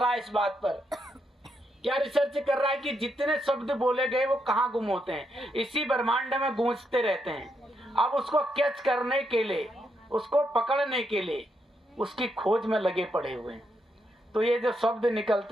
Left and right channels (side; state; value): both; normal; correlation 0.80